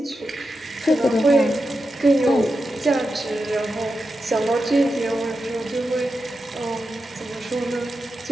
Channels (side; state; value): both; normal; correlation 0.89